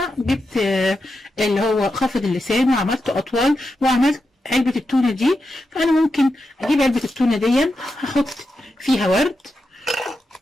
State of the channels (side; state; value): both; normal; correlation 0.88